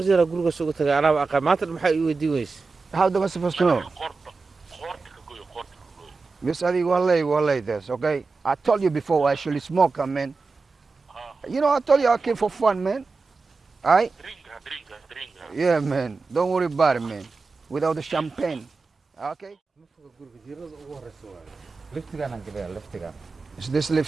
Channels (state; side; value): quieter; left; 4.2 dB